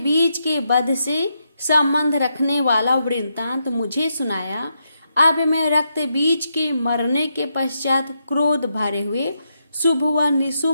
बीज के वध से संबंध रखने वाला वृत्तांत मुझे सुनाया। अब मैं रक्त बीज के मरने के पश्चात क्रोध भरे हुए शुभ व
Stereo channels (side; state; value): both; inverted; correlation -0.82